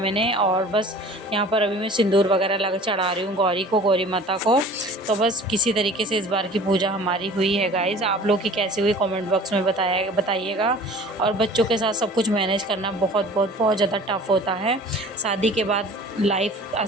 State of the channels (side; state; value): both; normal; correlation 0.45